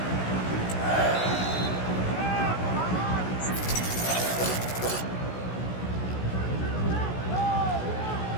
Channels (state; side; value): late; right; 16 ms